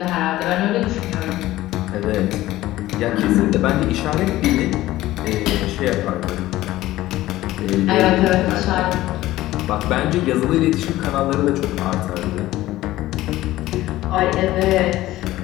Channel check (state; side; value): quieter; right; 16.0 dB